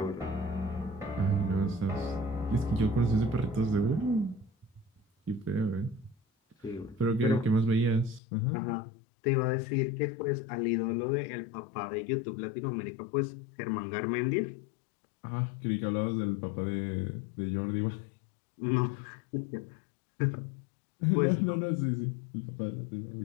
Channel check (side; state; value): right; drops out; at 8.2 s